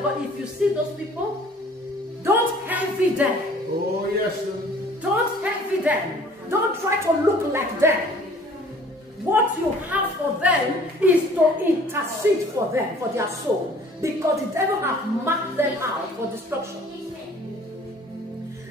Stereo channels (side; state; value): both; normal; correlation 0.52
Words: God, if you see those people, don't envy them. Oh, yes, sir. Don't envy them. Don't try to look like them. What you have for them is to intercede for them, for their soul. Because the devil has marked them out for destruction.